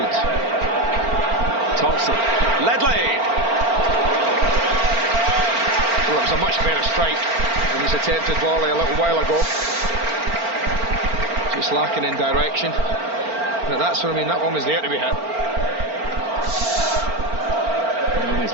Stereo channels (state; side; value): late; left; 4.4 ms